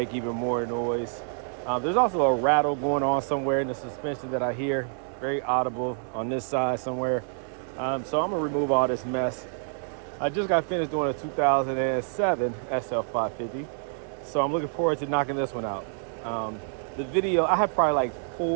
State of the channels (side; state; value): left; silent; 60 dB below the other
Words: even more noise. There's also a rattle going on somewhere in the suspension that I hear, very audible on this side somewhere. So I'm gonna remove all this mess. I just got finished doing a 2007 SL550, so I'm looking forward to knocking this one out. The video, I have probably like